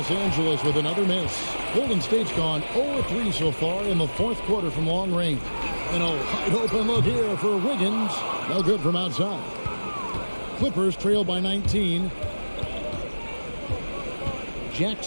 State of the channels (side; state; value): both; inverted; correlation -1.00